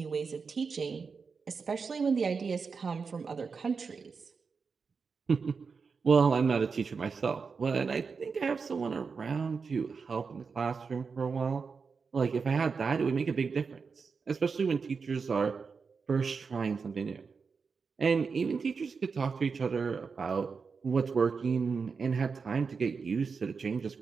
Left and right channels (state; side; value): quieter; left; 5.2 dB